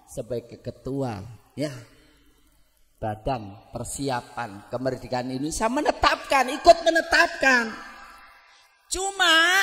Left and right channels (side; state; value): both; identical; correlation 1.00